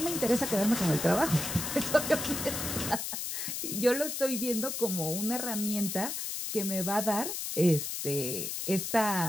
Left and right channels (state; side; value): noise; left; hiss, 4 dB below the sound